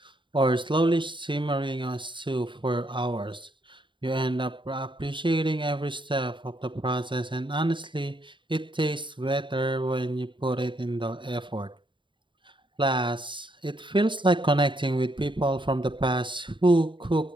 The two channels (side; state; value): left; late; 0.23 ms